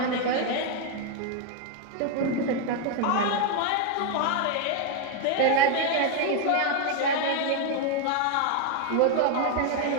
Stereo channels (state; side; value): different; both; correlation 0.01